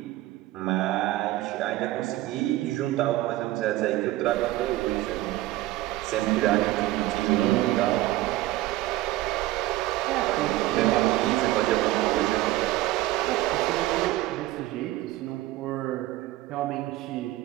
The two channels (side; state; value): left; quieter; 16.8 dB